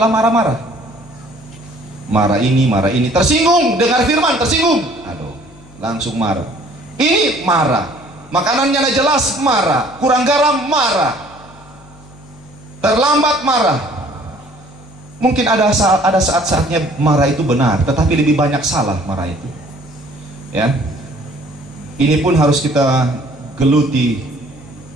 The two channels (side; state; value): left; noise; hum, 23 dB below the sound